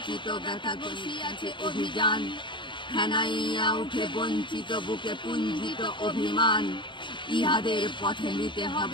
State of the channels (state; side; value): late; right; 0.23 ms